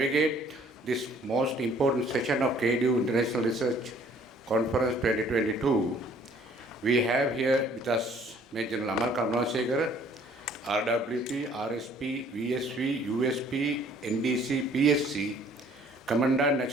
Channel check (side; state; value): both; normal; correlation 0.58